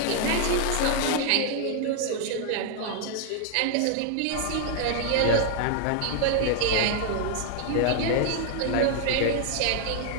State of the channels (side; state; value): both; different; correlation 0.00